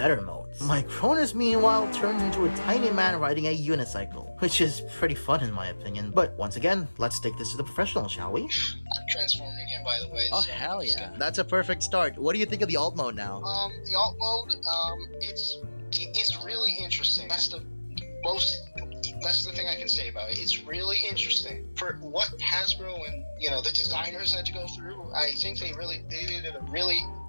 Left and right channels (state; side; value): inverted; both; correlation -1.00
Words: modes. Micronus, meanwhile, turns into a tiny man riding a unicycle, which is pretty fun in my opinion. But once again, let's take this to the professional, shall we? I'm transforming him, by the way. Oh, so hell yeah. That's a perfect start. What do you think of the alt mode now? The alt mode, it's really interesting. That's the thing I can say about it. It's really interesting. For what Hasbro and, the designers had to go through, I think they did a really